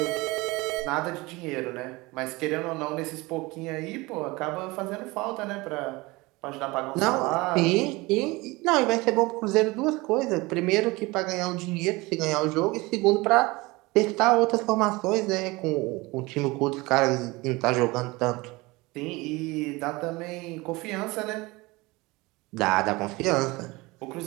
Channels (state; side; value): quieter; left; 22.8 dB